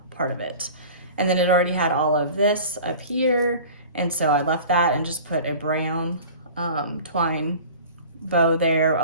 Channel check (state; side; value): inverted; both; correlation -0.41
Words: part of it. And then it already had all of this up here. And so I left that and just put a brown twine bow there